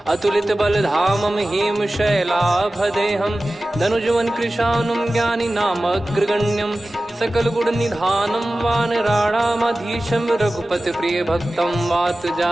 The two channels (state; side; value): normal; both; correlation 0.96